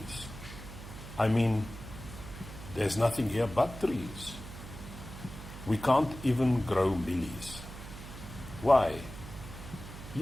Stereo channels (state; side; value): noise; right; hum, 12 dB below the sound